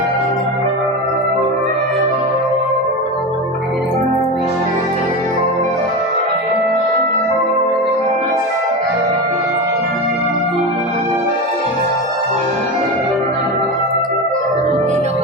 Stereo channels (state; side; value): normal; both; correlation 0.21